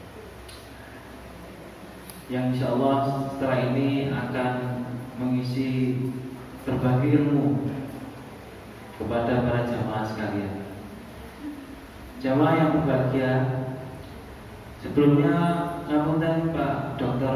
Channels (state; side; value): identical; both; correlation 1.00